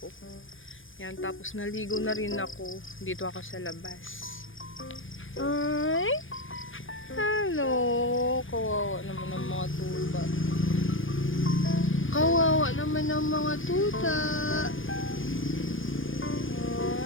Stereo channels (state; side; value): late; right; 0.58 ms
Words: Ayan, tapos naligo na rin ako. Dito ako sa labas. Ay! Hello! Kawawa naman ng mga tuta. Kawawa naman ng mga tuta.